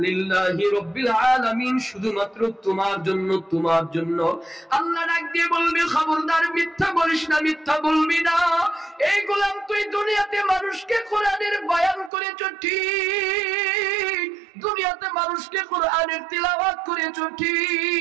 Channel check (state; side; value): drops out; left; at 12.1 s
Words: লিল্লাহি রাব্বিল আলামিন, শুধুমাত্র তোমার জন্য, তোমার জন্য। আল্লাহ ডাক দিয়ে বলবে, খবরদার, মিথ্যা বলিস না, মিথ্যা বলবি না। এই গোলাম, তুই দুনিয়াতে মানুষকে কোরআনের বয়ান করেছো ঠিক, দুনিয়াতে মানুষকে কোরআনের তিলাওয়াত করেছো